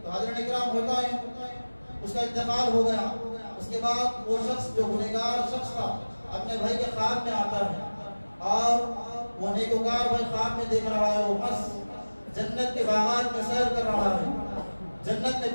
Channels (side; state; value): both; inverted; correlation -1.00